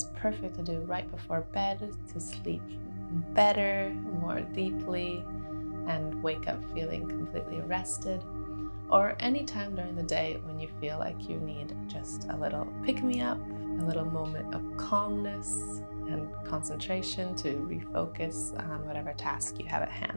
perfect to do right before bed to sleep better, more deeply, and wake up feeling completely rested. Or any time during the day when you feel like you need just a little pick-me-up, a little moment of calmness and concentration to refocus on whatever task you have at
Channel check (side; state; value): both; inverted; correlation -1.00